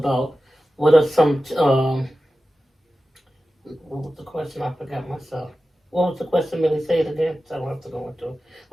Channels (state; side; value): normal; both; correlation 0.94